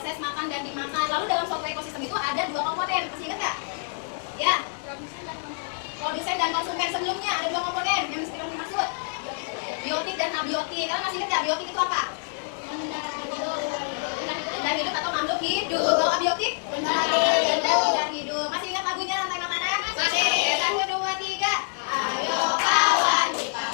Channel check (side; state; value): right; silent; digital silence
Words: makan dan dimakan. Lalu dalam suatu ekosistem itu ada 2 komponen. Masih ingat nggak? Ya. Produsen dan konsumen. Sebelumnya ada 2 komponen yang mesti kalian maksud. Biotik dan abiotik. Kalian masih ingat nggak biotik itu apa? Benda hidup atau makhluk hidup. Kalau abiotik? Benda hidup. Masih ingat lagunya rantai makanan? Masih. 1, 2, 3. Ayo kawan kita